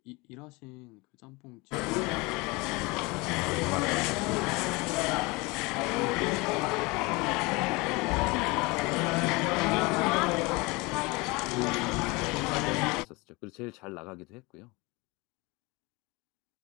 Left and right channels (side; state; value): right; quieter; 25.1 dB